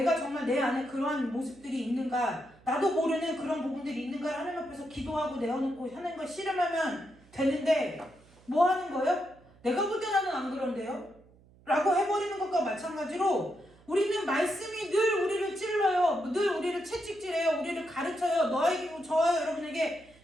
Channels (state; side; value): noise; right; hum, 27 dB below the sound